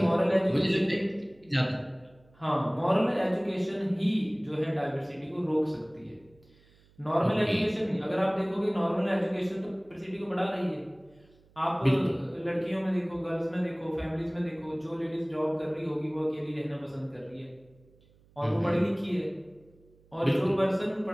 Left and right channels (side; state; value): right; noise; hum, 30 dB below the sound